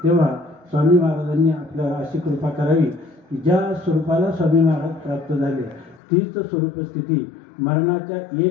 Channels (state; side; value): drops out; right; at 6.0 s